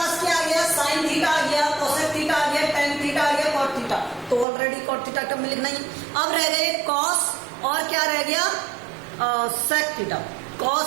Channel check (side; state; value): left; drops out; at 4.5 s